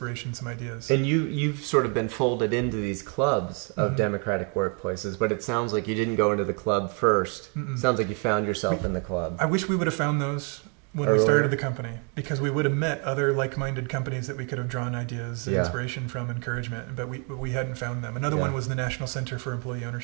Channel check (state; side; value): quieter; left; 37.6 dB